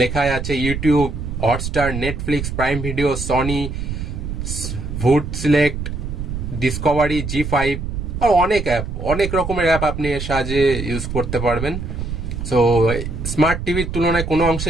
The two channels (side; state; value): right; noise; rumble, 5 dB below the sound